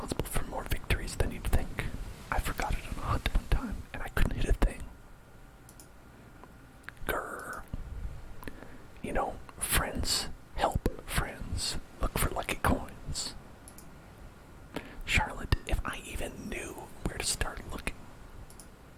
for more victories than you'd think. I forgot it on a hunt one time, and I couldn't hit a thing. Grrr. You know, friends help friends look for lucky coins. Charlotte, if I even knew where to start looking.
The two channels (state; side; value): identical; both; correlation 1.00